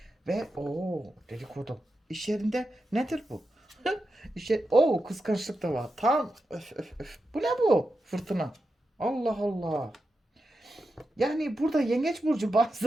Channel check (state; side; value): normal; both; correlation 0.89